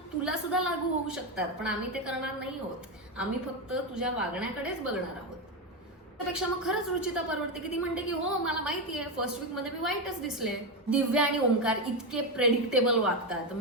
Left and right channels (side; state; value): both; normal; correlation 0.11